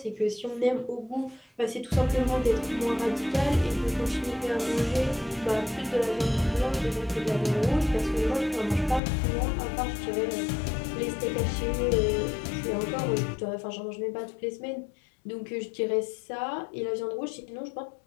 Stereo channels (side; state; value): right; drops out; at 9.0 s